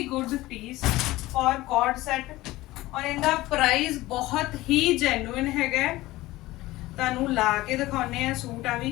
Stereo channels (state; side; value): quieter; right; 18.1 dB